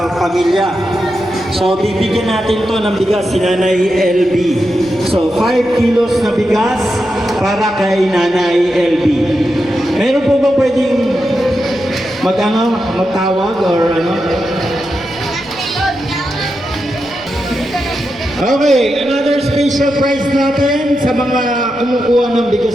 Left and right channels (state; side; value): noise; right; rumble, 24 dB below the sound